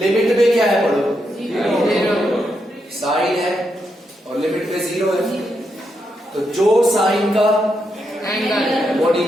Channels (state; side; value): normal; both; correlation 0.82